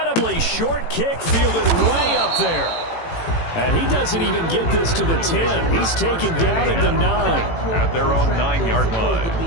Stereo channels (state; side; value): late; right; 18 ms